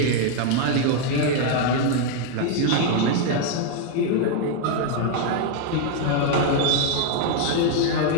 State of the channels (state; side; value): different; both; correlation 0.01